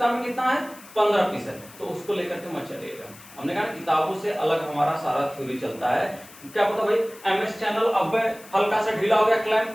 में कितना है 15 पीस है, तो उसको लेकर के मत चलिएगा। हमने कहा किताबों से अलग हमारा सारा थ्योरी चलता है। क्या पता भाई एमएस चैनल अब हल्का सा ढीला हो गया क्लैंप,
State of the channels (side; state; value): left; noise; hiss, 20 dB below the sound